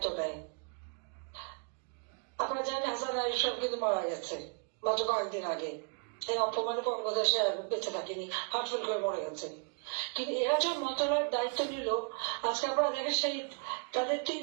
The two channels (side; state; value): left; quieter; 38.2 dB